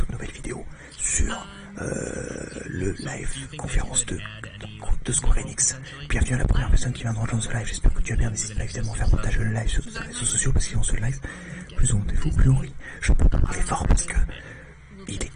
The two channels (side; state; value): both; identical; correlation 1.00